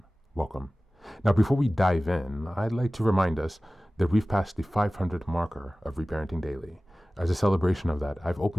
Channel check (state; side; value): normal; both; correlation 0.97